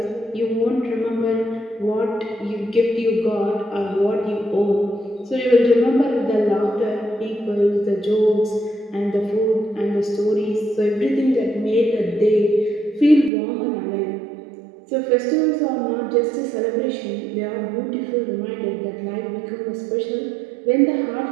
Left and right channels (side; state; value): left; drops out; at 13.3 s